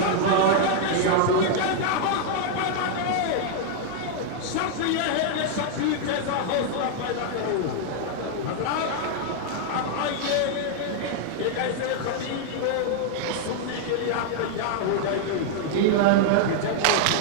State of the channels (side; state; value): both; different; correlation 0.00